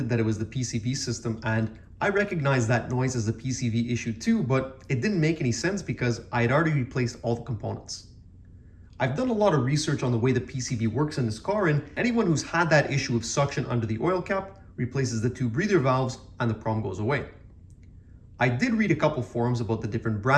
that it was the PCV system, and I recognized that noise as a PCV issue too, but it didn't make any sense because I had already replaced all the components. I've done a lot of research on the way the PCV works in this car, and anyone who's had that issue of suction under the oil cap replaces the two breather valves and the problem goes away. I did read a couple forums about the different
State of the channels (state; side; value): identical; both; correlation 1.00